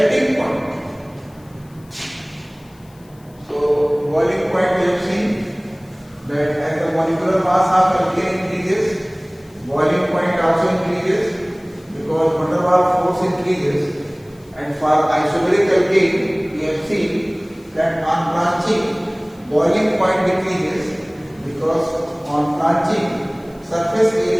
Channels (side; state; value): left; noise; hiss, 30 dB below the sound